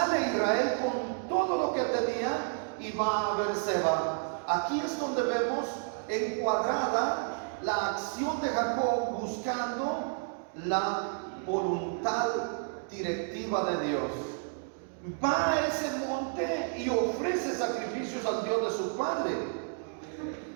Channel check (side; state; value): left; silent; 57 dB below the other